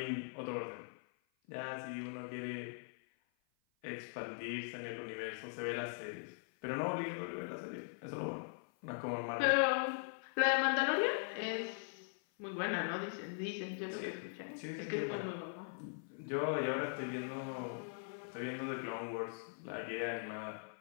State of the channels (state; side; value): silent; right; 51 dB below the other